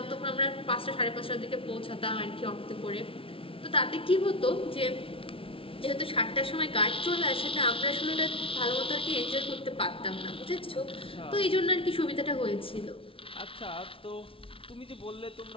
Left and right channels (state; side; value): late; right; 0.26 ms